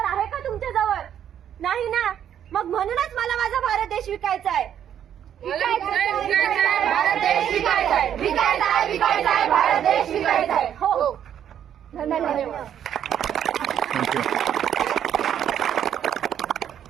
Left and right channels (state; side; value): quieter; left; 9.7 dB